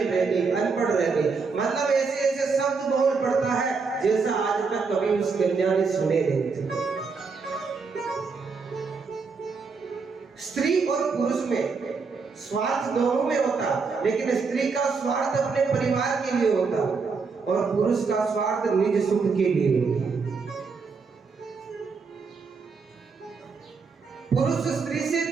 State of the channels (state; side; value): quieter; left; 4.9 dB